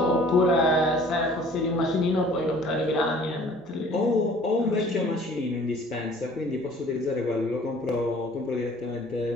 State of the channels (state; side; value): normal; both; correlation 0.52